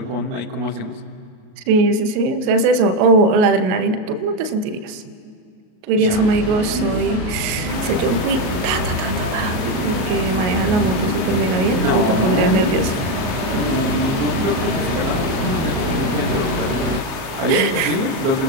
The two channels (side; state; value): left; late; 37 ms